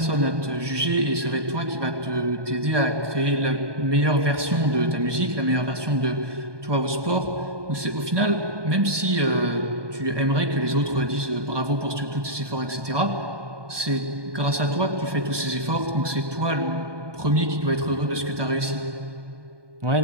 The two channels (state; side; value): late; left; 1.2 ms